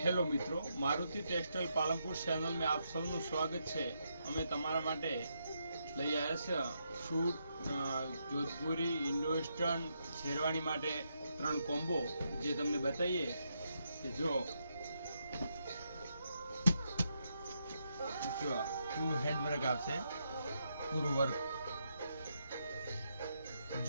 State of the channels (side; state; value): both; inverted; correlation -0.80